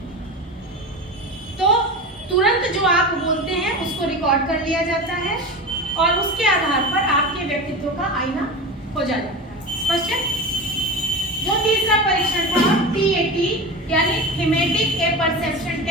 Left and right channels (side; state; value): both; normal; correlation 0.27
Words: तो तुरंत जो आप बोलते हैं उसको रिकॉर्ड कर लिया जाता है और उसके आधार पर आपके व्यक्तित्व का आईना खोजा जाता है। स्पष्ट है? जो तीसरा परीक्षण था टीएटी यानी थीमेटिक ए परसेप्शन